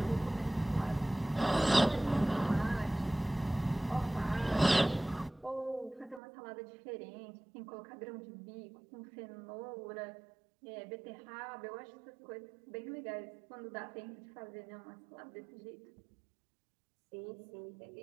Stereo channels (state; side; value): drops out; left; at 6.2 s